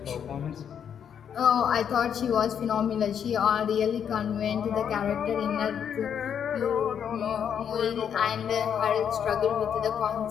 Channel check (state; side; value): quieter; right; 8.2 dB